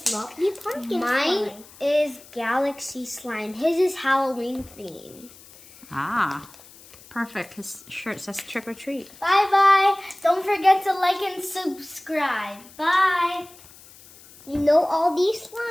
pumpkin Mine slime. is Galaxy Slime. His is Halloween theme. Ah, perfect. His shirt says trick or treat. Bye-bye. Don't forget to like and subscribe. Bye. You know all these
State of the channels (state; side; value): noise; left; hiss, 22 dB below the sound